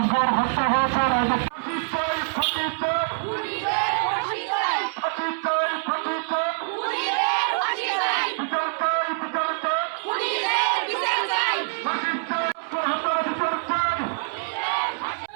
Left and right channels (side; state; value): left; silent; 62 dB below the other